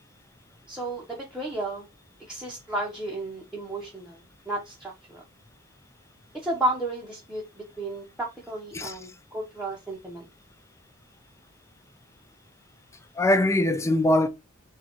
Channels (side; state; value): both; normal; correlation 0.58